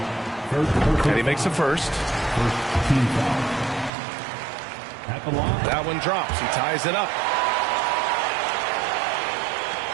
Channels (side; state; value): left; drops out; at 3.9 s